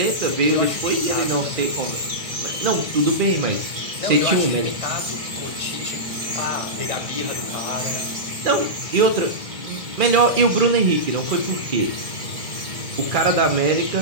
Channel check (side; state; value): left; late; 2.1 ms